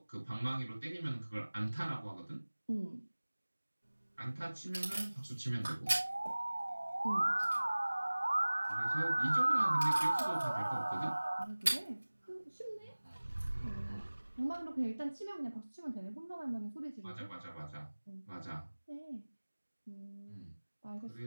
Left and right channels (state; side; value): inverted; both; correlation -1.00